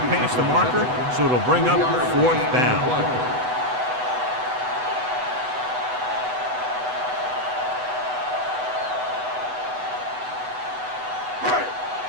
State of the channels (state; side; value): late; left; 8.0 ms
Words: past the marker, so it'll bring up fourth down.